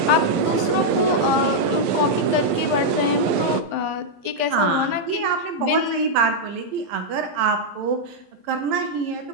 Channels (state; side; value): late; left; 11 ms